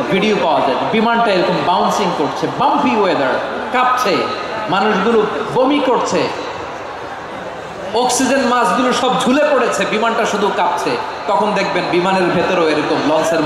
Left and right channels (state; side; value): identical; both; correlation 1.00